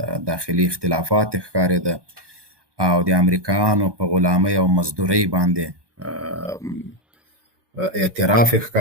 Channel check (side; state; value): left; late; 1.2 ms